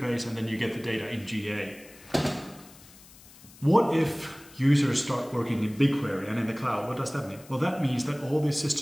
and then you get the data in GA. What if users start working in BigQuery and in the cloud? What does that mean? Well, that means that all these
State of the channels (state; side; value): noise; left; hiss, 22 dB below the sound